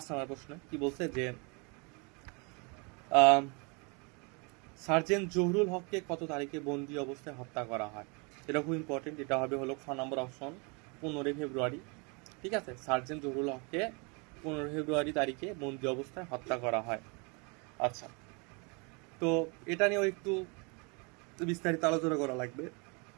নম্বর প্রশ্ন কি বলছে যে সার্জেন্ট জহুরুল হককে কত তারিখে বন্দি অবস্থায় হত্যা করা হয়? এটা খুব ইম্পর্টেন্ট। এটা হবে হলো 6 নম্বর অপশন, 15 ফেব্রুয়ারি। ঠিক আছে, সার্জেন্ট জহুরুল হককে 15 ফেব্রুয়ারি তারিখে বন্দি অবস্থায় হত্যা করা হয়। আচ্ছা, তো এটা নিয়েও একটু বিস্তারিত আলোচনা করা লাগবে।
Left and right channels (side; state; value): left; quieter; 32.0 dB